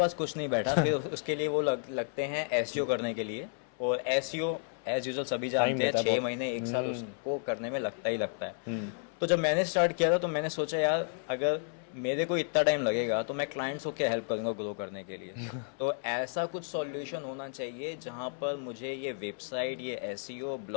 कुछ नहीं बैठा, फिर उसके लिए वो लगते हैं एसईओ करने के लिए। और एसईओ एज यूजुअल सभी जानते हैं 6 महीने 1 साल उसको करने में लगता ही लगता है। तो जब मैंने स्टार्ट किया था तो मैंने सोचा यार अगर मेरे को इतना टाइम लगेगा तो मैं क्लाइंट्स को क्या हेल्प करूंगा ग्रो करने के लिए। तो ऐसा कुछ सॉल्यूशन होना चाहिए जहां पर मुझे ये वेबसाइट, ये एसईओ,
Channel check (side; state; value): right; silent; 56 dB below the other